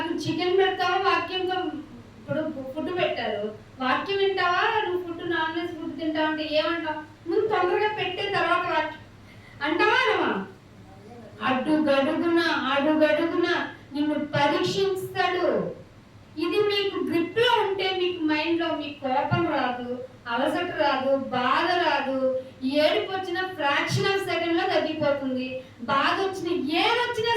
చికెన్ పెడతావా వాక్యంతో ఇప్పుడు ఫుడ్ పెట్టారు, వాక్యం వింటావా, నువ్వు ఫుడ్ నాన్ వెజ్ ఫుడ్ తింటావు అంటే ఏమంటావు? ముందు తొందరగా పెట్టే తర్వాత వాక్యం అంటావా అనవా? అడుగడుగున నిన్ను పరీక్షిస్తాడు. ఇది మీకు గ్రిప్ లో ఉంటే మీకు మైండ్ లో మీకు కోపం రాదు, అలసట రాదు, బాధ రాదు. ఏడుపు వచ్చిన ఫ్రాక్షన్ ఆఫ్ సెకండ్ లో తగ్గిపోతుంది. బాధ వచ్చిన ఏదొచ్చినా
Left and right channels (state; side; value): identical; both; correlation 1.00